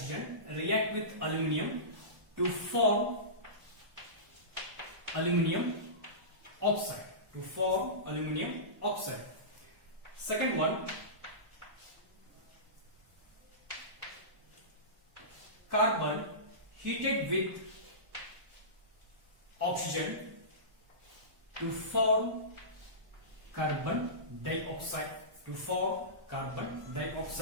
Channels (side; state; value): left; late; 1.0 ms